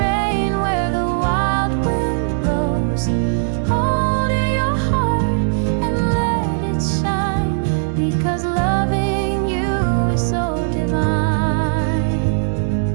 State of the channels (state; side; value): silent; left; 67 dB below the other